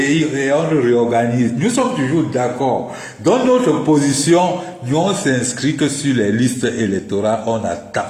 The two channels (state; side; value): identical; both; correlation 1.00